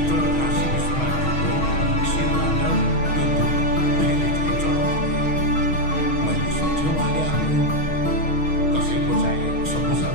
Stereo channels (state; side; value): late; right; 6.4 ms